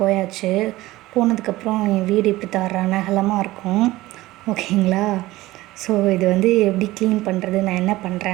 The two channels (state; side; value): quieter; left; 17.9 dB